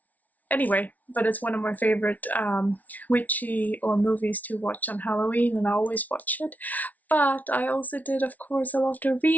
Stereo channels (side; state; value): right; late; 0.074 ms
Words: anyway, but it's one of my favorite witchy or movies to watch on Halloween, and I always watch it. But I also did, of course, a lot of